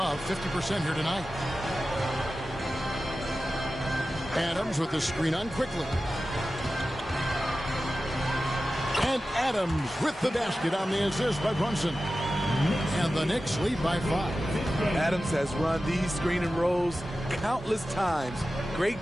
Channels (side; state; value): both; normal; correlation 0.94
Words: 50% here tonight. Adams with the screen on quickly. And Adams with the basket on the assist by Brunson. And the Knicks lead by 5. Adams has run these screen and rolls countless times. Great